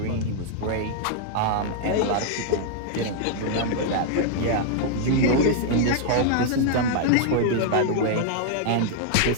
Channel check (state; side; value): different; both; correlation 0.00